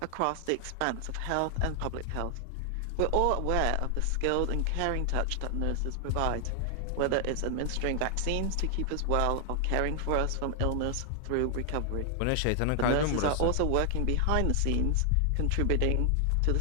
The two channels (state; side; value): different; both; correlation 0.00